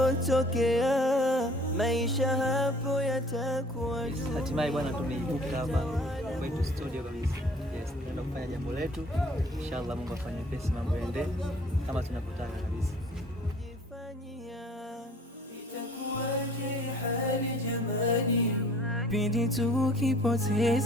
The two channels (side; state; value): both; normal; correlation 0.53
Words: maisha hapo yatakuwa juu. Hatimaye bwana, tumeibuka hapa kwetu studio kabisa. Yes, tunaenda kufanya jambo letu. Inshallah Mungu afanye pesi, mambo yaende kama tunapotaka kabisa. Itakuwaje hali jamani, pindi